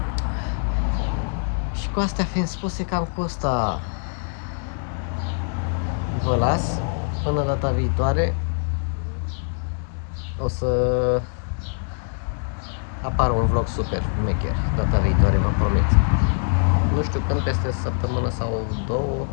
Și cu astea fiind spuse, cam cu asta vă las. Până data viitoare o să apară un vlog super mecher. Data viitoare, vă promit. Nu știu când, peste săptămână sau două,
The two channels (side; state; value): right; silent; digital silence